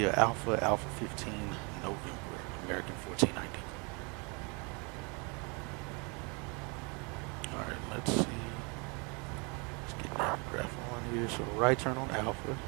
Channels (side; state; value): left; quieter; 31.4 dB